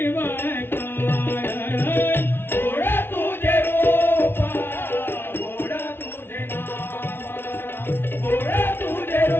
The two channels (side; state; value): right; late; 0.11 ms